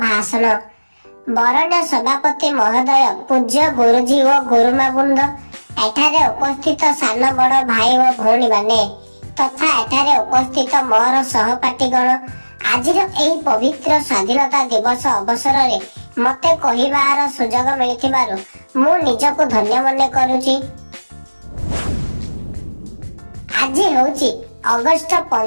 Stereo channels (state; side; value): inverted; both; correlation -1.00